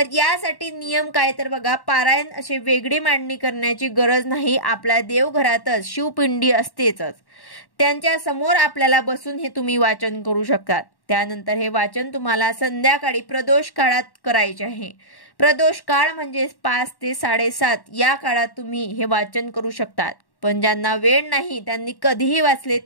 यासाठी नियम काय तर बघा, पारायण असे वेगळी मांडणी करण्याची गरज नाही। आपल्या देवघरातच शिवपिंडी असतेच, त्यांच्या समोर आपल्याला बसून हे तुम्ही वाचन करू शकतात। त्यानंतर हे वाचन तुम्हाला संध्याकाळी प्रदोष काळात करायचे आहे। प्रदोष काळ म्हणजे 5 ते 7:30 या काळात तुम्ही हे वाचन करू शकतात, पण ज्यांना वेळ नाही त्यांनी कधीही वाचले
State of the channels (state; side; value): late; right; 1.1 ms